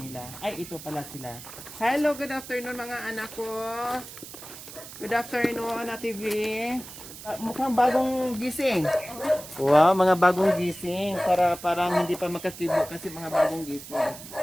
Ay, ito pala sila. Hello, good afternoon mga anak ko. Good afternoon, Ate V. Mukhang bagong gising. Wow, mga bagong gising. Parang hindi pa makakibo kasi mga bagong gising.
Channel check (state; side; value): noise; right; hiss, 14 dB below the sound